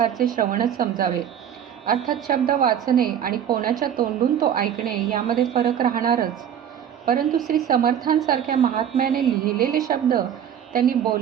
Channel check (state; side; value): quieter; left; 9.3 dB